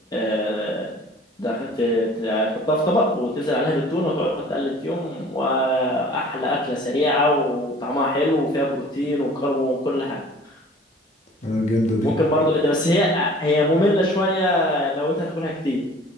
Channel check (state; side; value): normal; both; correlation 0.48